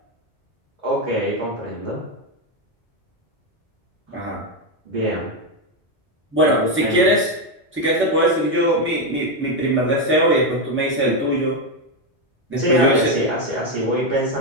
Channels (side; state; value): both; normal; correlation 0.07